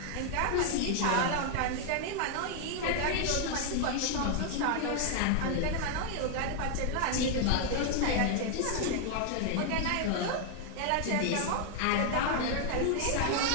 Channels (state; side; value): different; both; correlation 0.00